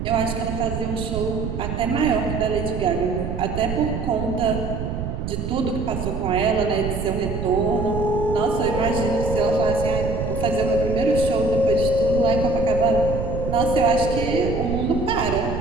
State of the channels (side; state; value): right; noise; rumble, 4 dB below the sound